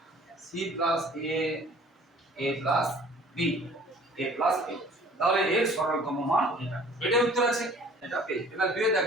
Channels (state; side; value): normal; both; correlation 0.51